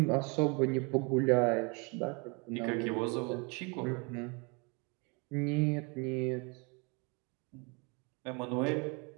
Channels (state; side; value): quieter; left; 31.4 dB